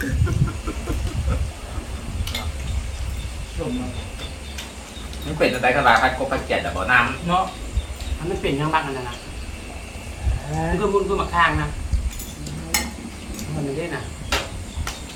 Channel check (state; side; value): identical; both; correlation 1.00